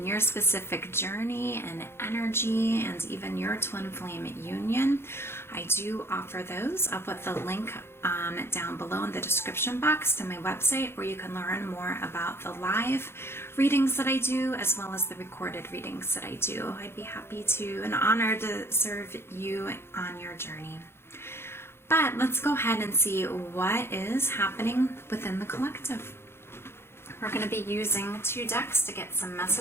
your specific journey and energy and even your twin flame union, I do offer those. I'll put the link down below in the description box to my website where you can learn more about the live readings that I do as well as the recorded readings that I do. I'd be happy to and honored to serve you on your journey. But let's go ahead and see what is happening within the collective. We're going to be using 2 decks to get some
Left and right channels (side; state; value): right; late; 0.12 ms